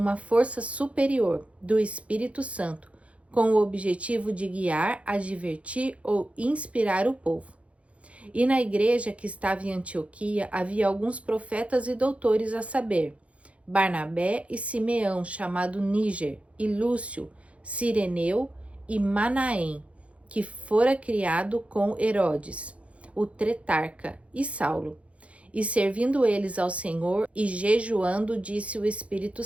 força superior do Espírito Santo, com o objetivo de guiar, advertir ou inspirar o povo. E na igreja que estava em Antioquia havia alguns profetas e doutores, a saber, Barnabé e Simeão, chamado Níger, e Lúcio, Cireneu e Manaém, que fora criado com Herodes, o tretarca, e Saulo. E servindo eles ao Senhor e jejuando, disse o Espírito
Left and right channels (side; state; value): left; late; 0.063 ms